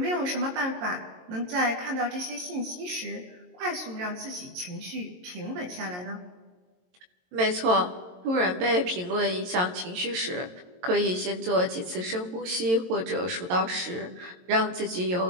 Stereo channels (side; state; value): left; late; 22 ms